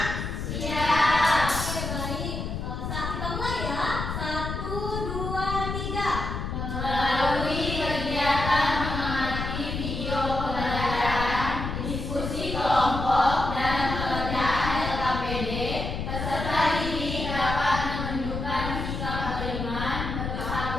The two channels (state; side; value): noise; left; rumble, 4 dB below the sound